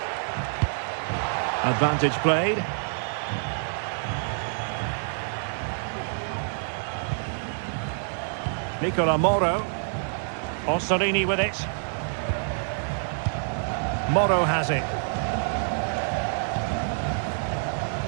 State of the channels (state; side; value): silent; left; 57 dB below the other